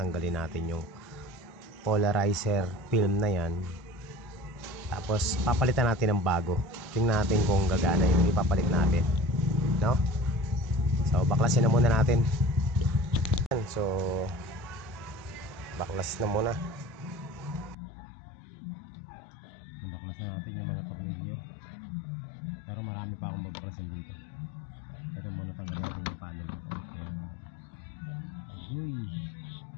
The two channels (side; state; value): right; drops out; at 17.8 s